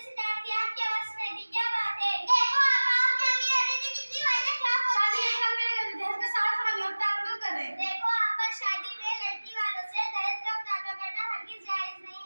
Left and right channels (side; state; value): both; inverted; correlation -1.00